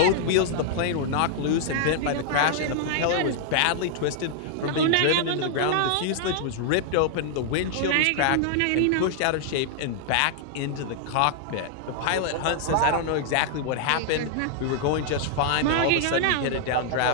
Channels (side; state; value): both; different; correlation -0.01